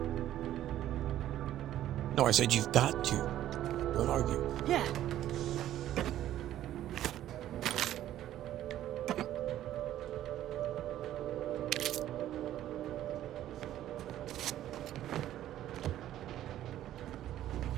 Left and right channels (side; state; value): left; quieter; 12.6 dB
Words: No, I said you've got to. Don't argue. Yeah.